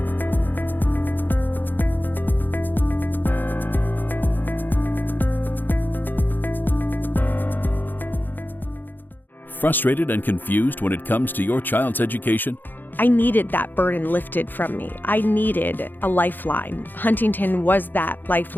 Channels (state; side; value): late; right; 0.090 ms